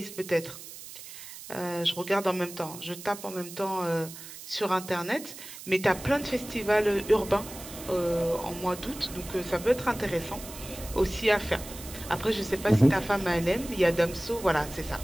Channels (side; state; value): right; noise; hiss, 14 dB below the sound